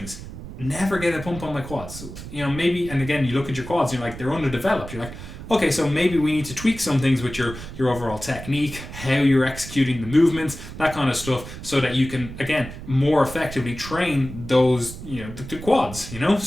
never get a pump on my quads. Maybe, and again, you look at your quads, you're like, they're underdeveloped. You're like, okay, so maybe we need to tweak some things with your overall technique, how you're executing the movements, that kind of stuff, so that you can, again, more effectively train those, the quads,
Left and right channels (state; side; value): noise; right; rumble, 12 dB below the sound